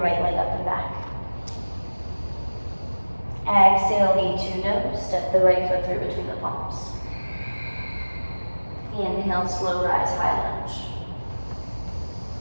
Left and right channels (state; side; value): inverted; both; correlation -1.00